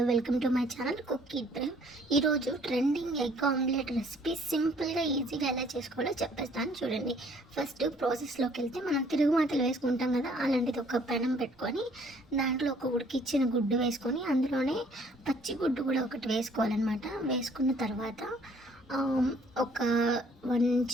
welcome to my channel cook it Brave. ఈరోజు ట్రెండింగ్ ఎగ్ ఆమ్లెట్ రెసిపీ సింపుల్గా ఈజీగా ఎలా చేసుకోవాలో చెప్పేస్తాను చూడండి. ఫస్ట్ ప్రాసెస్లోకి వెళ్తే మనం తిరుగుమాతలు వేసుకుంటాం కదా, అలాంటిది ఒక పెనం పెట్టుకొని దాంట్లో ఒక ఉడికిచ్చిన గుడ్డు వేసుకొని అందులోనే పచ్చి గుడ్డు కూడా ఒకటి వేసుకోవాలన్నమాట. వేసుకున్న తర్వాత ఒక 1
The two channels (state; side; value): normal; both; correlation 0.60